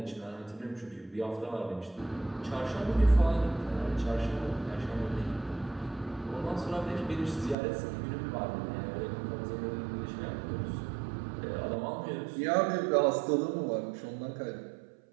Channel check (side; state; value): left; drops out; at 7.6 s